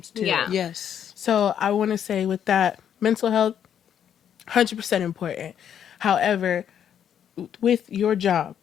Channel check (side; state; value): right; quieter; 9.0 dB